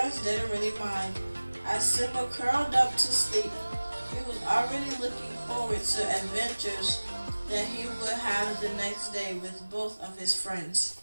didn't really mind. As Simba curled up to sleep, he was already looking forward to adventures that he would have the next day with both of his friends.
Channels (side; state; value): both; inverted; correlation -1.00